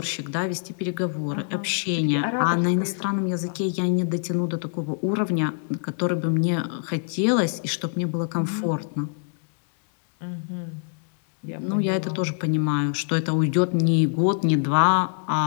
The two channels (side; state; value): right; silent; digital silence